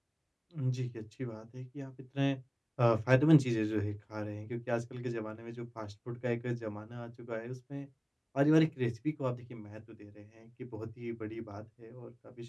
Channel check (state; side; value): identical; both; correlation 1.00